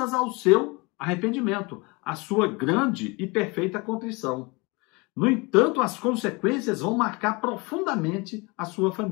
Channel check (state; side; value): quieter; right; 26.9 dB